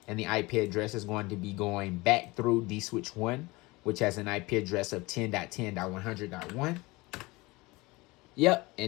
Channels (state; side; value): quieter; right; 22.8 dB